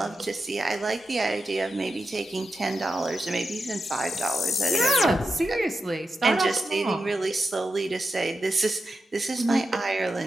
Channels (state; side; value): normal; both; correlation 0.89